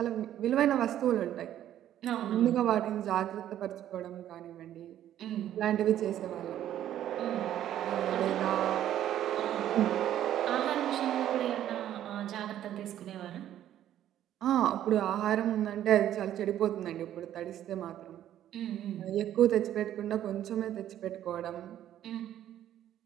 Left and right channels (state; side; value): quieter; left; 11.6 dB